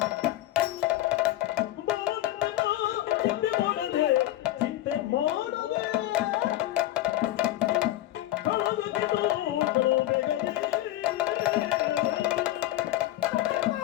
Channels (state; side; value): quieter; right; 14.4 dB